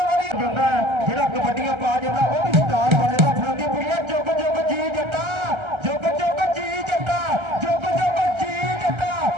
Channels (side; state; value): left; late; 1.3 ms